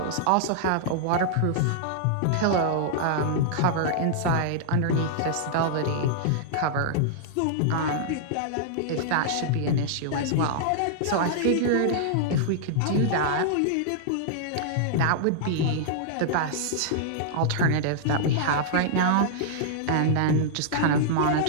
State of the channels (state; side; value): different; both; correlation -0.02